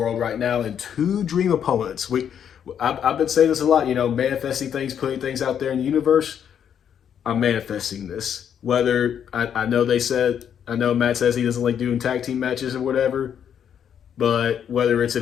right now, and two dream opponents. I've been saying this a lot, you know, manifesting things, putting things out there in the universe. I'm manifesting this. Whether I know I know Matt says he doesn't like doing tag team matches or whatever, but whether it's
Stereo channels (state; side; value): quieter; right; 8.6 dB